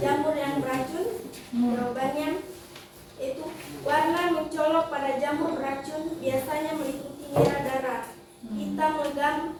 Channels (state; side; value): identical; both; correlation 1.00